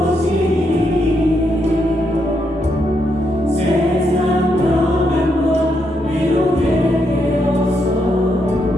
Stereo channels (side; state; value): both; normal; correlation 0.79